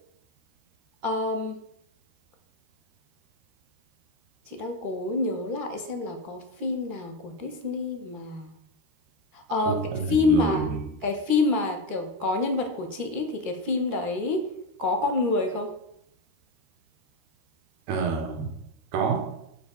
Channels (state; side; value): late; left; 13 ms